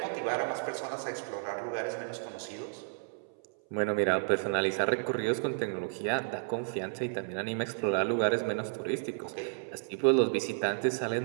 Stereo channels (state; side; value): silent; left; 56 dB below the other